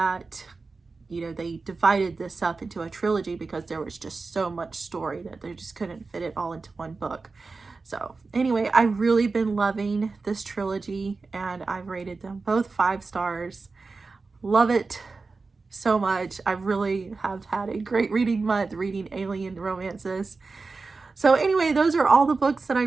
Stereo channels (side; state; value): left; quieter; 4.1 dB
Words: you know, they divided this up into a trilogy because there was just so much story that they just couldn't fit it all into one book. So anyway, I've really been loving this trilogy, and I've rated them both 5 stars. Love it so much. I really have had a great reading month reading alien romances. So anyway, those are all the books that I